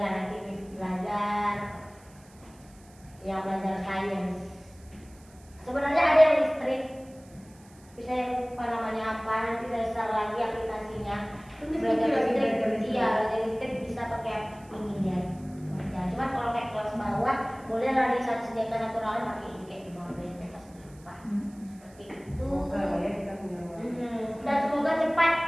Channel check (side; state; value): right; noise; hiss, 27 dB below the sound